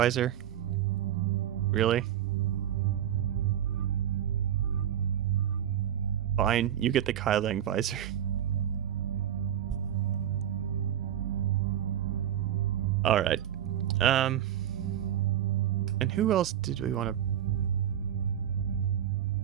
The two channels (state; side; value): quieter; left; 10.5 dB